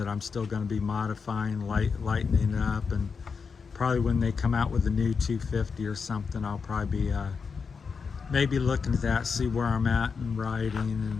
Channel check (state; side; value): quieter; right; 5.4 dB